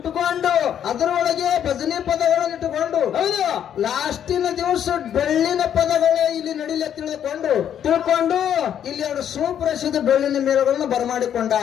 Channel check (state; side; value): quieter; right; 9.5 dB